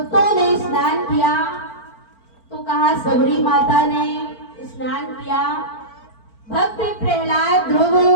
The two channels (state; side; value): late; right; 4.4 ms